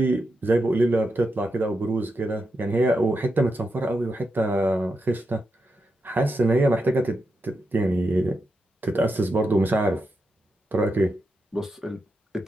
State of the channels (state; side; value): normal; both; correlation 0.86